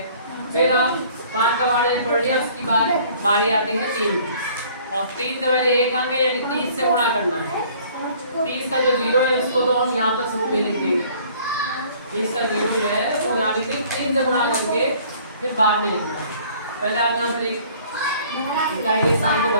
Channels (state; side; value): inverted; both; correlation -0.55